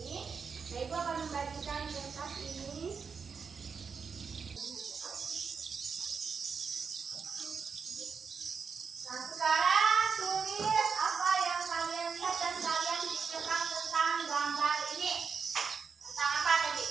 Nah, Ibu akan membagikan kertas ini. Nah, sekarang tulis apa yang kalian lihat dan kalian pikirkan tentang gambar ini. Tentang apa tadi?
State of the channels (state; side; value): quieter; left; 5.8 dB